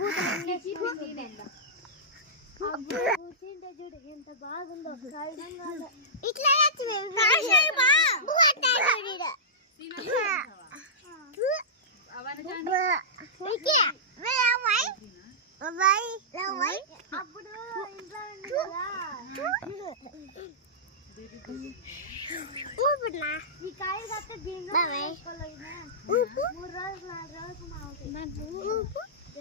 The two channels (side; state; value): both; normal; correlation -0.16